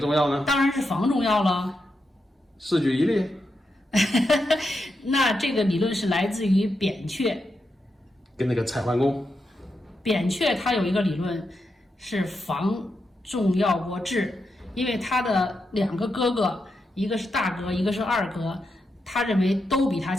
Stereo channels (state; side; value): normal; both; correlation 0.85